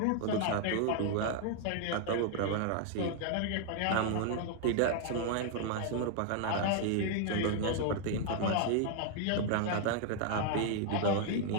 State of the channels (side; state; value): both; different; correlation -0.01